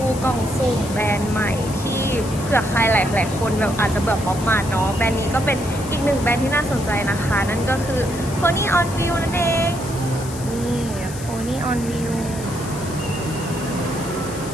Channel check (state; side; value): noise; left; hiss, 13 dB below the sound